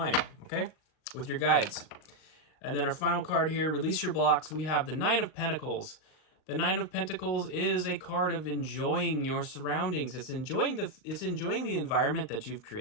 okay? With your guides. And then our final card here, release your blocks. We have the Nine of Pentacles. The Nine of Pentacles is a card of enjoying your surroundings. It's enjoying the environment that you've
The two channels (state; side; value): late; right; 38 ms